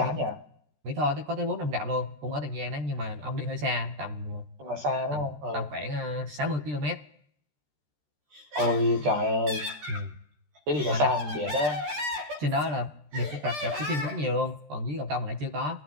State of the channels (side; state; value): left; late; 13 ms